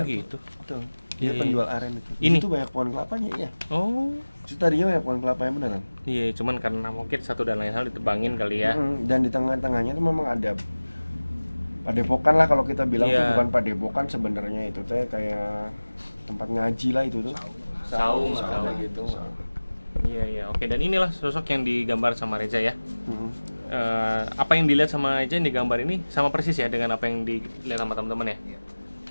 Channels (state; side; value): inverted; both; correlation -1.00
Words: gitu. Betul. Dia penjual aren itu. Ini itu banyak pohon kelapanya ya. Oh. Itu tadinya banyak pohon kelapanya beneran. Iya, cuman karena mungkin satu dan lain hal ditebangin kali ya. Dan di tengah-tengahnya tuh memang ada padepokan lah kalau kita bilang tuh bukan padepokan sebenarnya itu teh kayak tempat ngaji lah itu tuh. Saung gitu. Iya, oke. Dan inilah sosok yang digambar sama Reza ya. Apa yang dilihat sama Reza yang digambar ini sama persis ya dengan apa yang dilihat sama teman-teman ya.